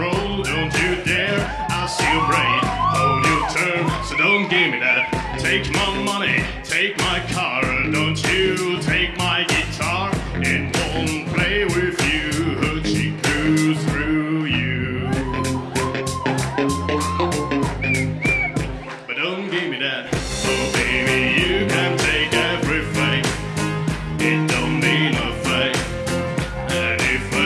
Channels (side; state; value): both; identical; correlation 1.00